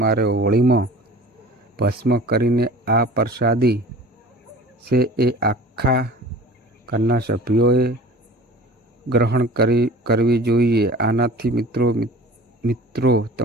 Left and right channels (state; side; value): normal; both; correlation 0.42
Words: હોળીમાં ભસ્મ કરીને આ પ્રસાદી છે એ આખા ઘરના સભ્યોએ ગ્રહણ કરવી જોઈએ. આનાથી મિત્રો